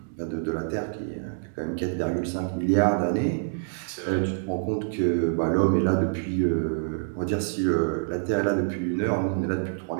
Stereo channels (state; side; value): silent; left; digital silence